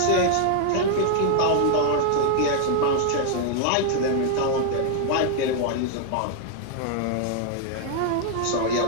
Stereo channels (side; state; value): both; different; correlation 0.00